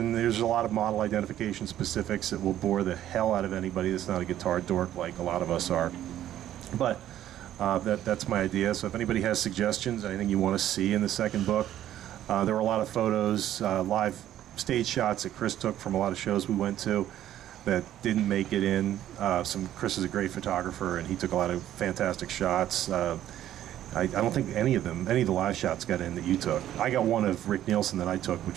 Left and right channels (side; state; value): left; quieter; 12.1 dB